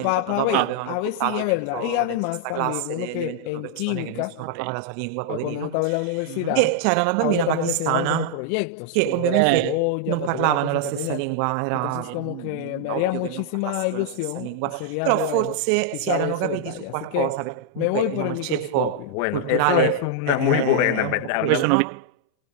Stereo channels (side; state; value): both; different; correlation -0.01